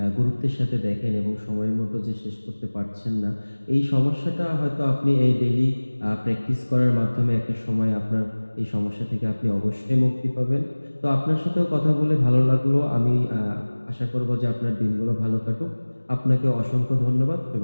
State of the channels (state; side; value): inverted; both; correlation -1.00